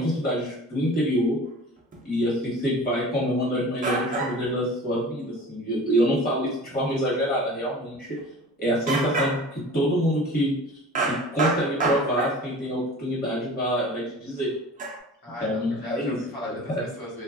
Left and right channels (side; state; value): both; normal; correlation 0.40